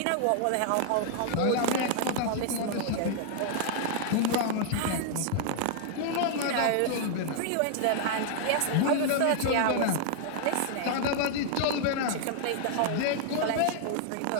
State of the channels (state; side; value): different; both; correlation -0.01